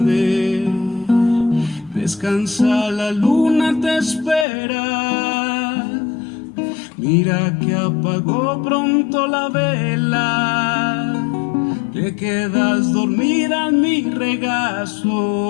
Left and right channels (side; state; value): right; drops out; at 4.5 s